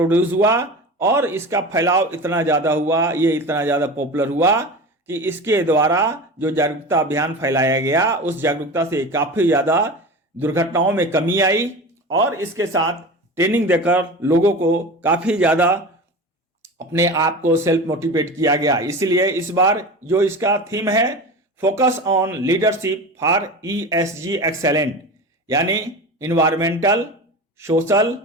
हुआ और इसका फैलाव इतना ज़्यादा हुआ, ये इतना ज़्यादा पॉपुलर हुआ कि इसके द्वारा जो जागरूकता अभियान फैलाया गया उस जागरूकता से काफ़ी ज़्यादा दुर्घटनाओं में कमी आई और इसके साथ ट्रेनिंग देकर लोगों को काफ़ी ज़्यादा अपने आप को सेल्फ मोटिवेट किया गया। इसलिए इस बार जो इसका थीम है focus on leadership for ESG excellent, यानी इन्वायरमेंटल सोशल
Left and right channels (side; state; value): both; normal; correlation 0.30